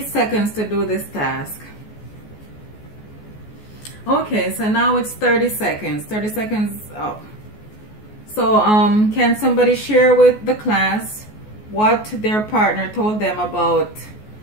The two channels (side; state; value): right; late; 14 ms